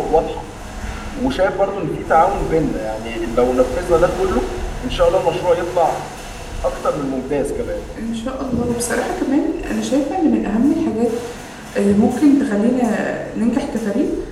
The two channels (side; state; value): both; identical; correlation 1.00